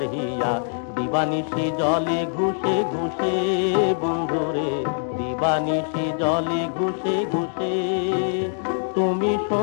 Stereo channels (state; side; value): silent; right; digital silence